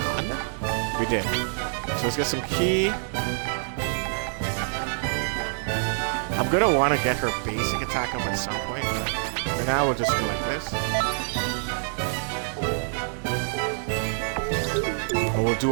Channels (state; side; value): silent; left; digital silence